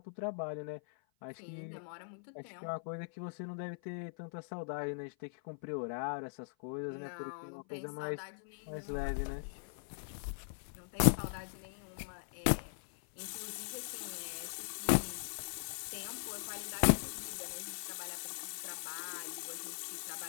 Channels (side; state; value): right; silent; 51 dB below the other